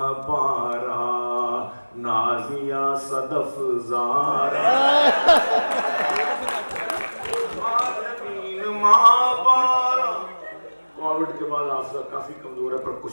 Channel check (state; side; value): inverted; both; correlation -1.00